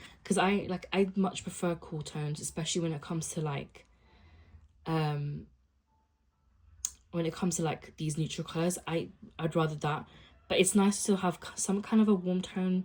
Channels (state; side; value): identical; both; correlation 1.00